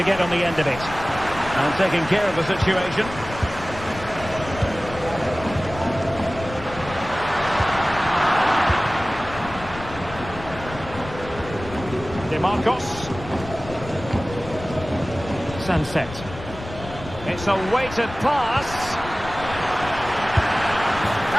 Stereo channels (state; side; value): noise; left; rumble, 13 dB below the sound